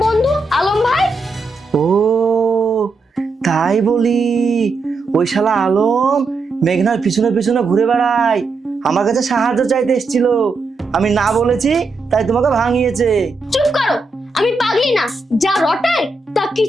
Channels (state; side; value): quieter; left; 3.6 dB